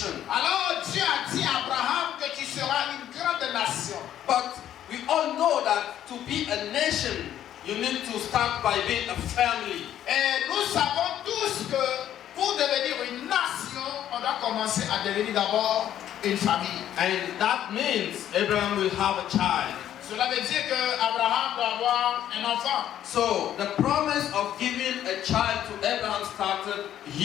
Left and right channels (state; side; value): quieter; right; 11.2 dB